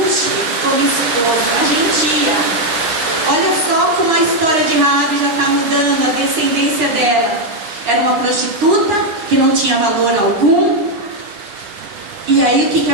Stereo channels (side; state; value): left; late; 9.7 ms